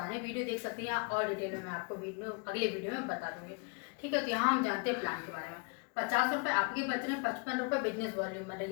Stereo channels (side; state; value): right; quieter; 32.8 dB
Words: वीडियो देख सकते हैं और डिटेल में मैं आपको अगले वीडियो में बता दूंगी। ठीक है, तो यहाँ हम जानते हैं प्लान के बारे में। 50 रुपये आपके बच रहे हैं, 55 रुपये बिजनेस वॉल्यूम बन रहे।